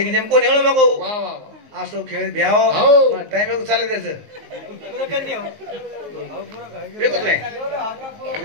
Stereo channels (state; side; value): late; left; 19 ms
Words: जेम कोणी हळू नको असो खेळ भ्याव टाइम चालत त्याचं